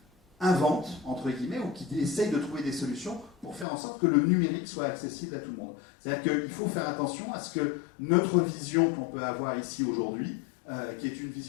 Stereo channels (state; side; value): drops out; right; at 3.7 s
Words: inventent, entre guillemets, ou qui essayent de trouver des solutions pour faire en sorte que le numérique soit accessible à tout le monde. C'est-à-dire qu'il faut faire attention à ce que notre vision qu'on peut avoir ici aujourd'hui, qui est une